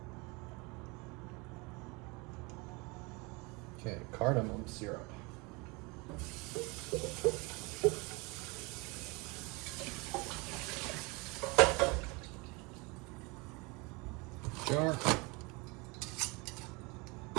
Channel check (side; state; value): left; quieter; 27.3 dB